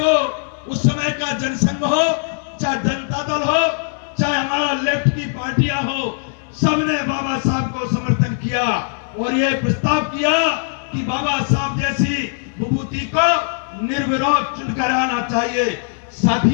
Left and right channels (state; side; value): silent; right; digital silence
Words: उस समय का जनसंघ हो, चाहे जनता दल हो, चाहे हमारा लेफ्ट की पार्टियां हो, सबने बाबा साहब को समर्थन किया और ये प्रस्ताव किया कि बाबा साहब जैसी विभूति को निर्विरोध चुनकर आना चाहिए।